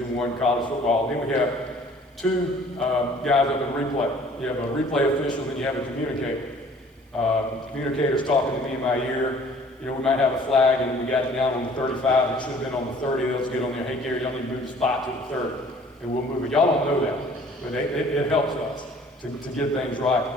I college football. Then we have 2 guys up in replay. You have a replay official, then you have a communicator. Communicator's talking to me in my ear. We might have a flag and we got it down on the 35. It should have been on the 30. They'll just get on there. Hey, Gary, y'all need to move the spot to the 30. And we'll move it. Y'all don't know that, but it helps us to get things right.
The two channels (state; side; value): normal; both; correlation 0.53